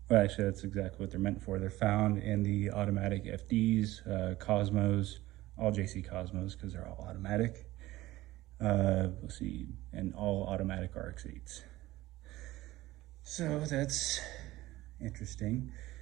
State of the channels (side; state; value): left; quieter; 17.3 dB